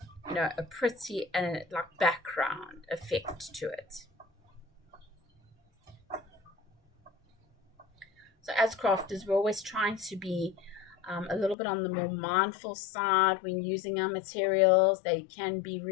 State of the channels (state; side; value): drops out; right; at 11.6 s